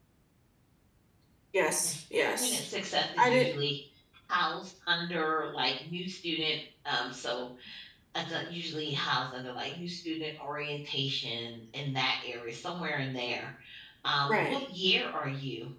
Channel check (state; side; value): identical; both; correlation 1.00